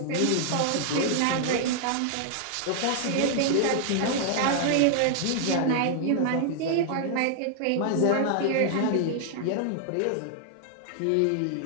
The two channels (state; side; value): different; both; correlation 0.00